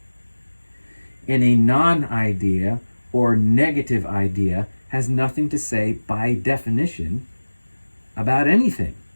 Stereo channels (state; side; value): inverted; both; correlation -1.00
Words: And a non-idea or negative idea has nothing to say by definition about anything.